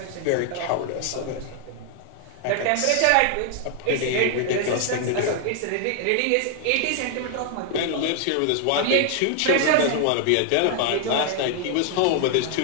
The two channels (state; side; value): different; both; correlation 0.00